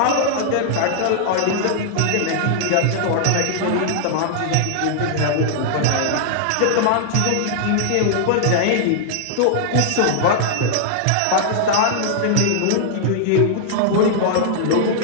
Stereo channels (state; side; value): different; both; correlation -0.01